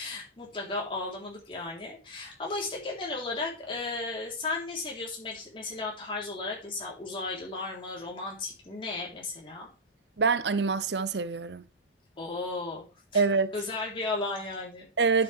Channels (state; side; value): normal; both; correlation -0.13